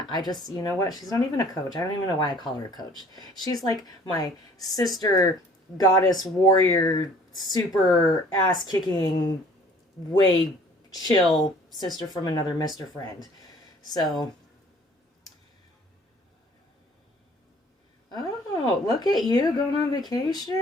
I just, you know what? She's not even a coach. I don't even know why I call her a coach. She's like my sister, goddess, warrior, super ass-kicking, way chill sister from another Mr. Friend. So... Oh, look at you going on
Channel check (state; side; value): normal; both; correlation 0.54